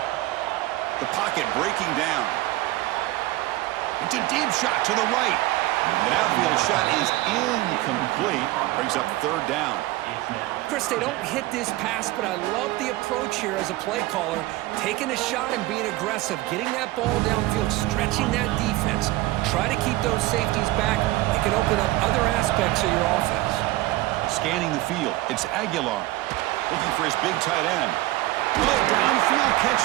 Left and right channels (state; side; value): quieter; left; 18.1 dB